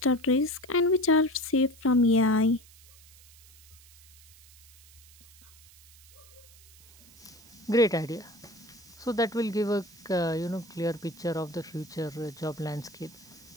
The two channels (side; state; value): right; noise; hiss, 24 dB below the sound